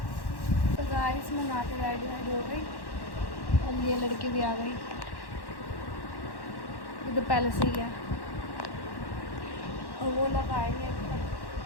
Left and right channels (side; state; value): right; late; 1.1 ms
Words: तो गाइस मैं नहा के रेडी हो गई और ये लड़की भी आ गई। ये तो पहले से ही है और वो लोग आएंगे। अब